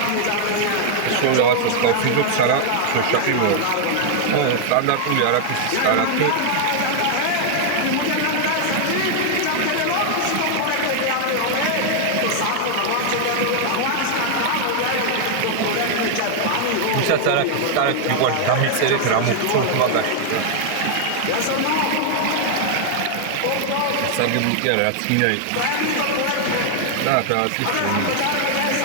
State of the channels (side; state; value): both; different; correlation 0.00